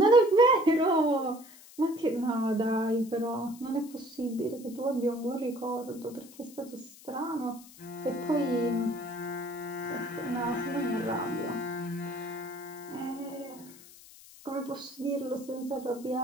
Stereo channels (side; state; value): left; noise; hiss, 20 dB below the sound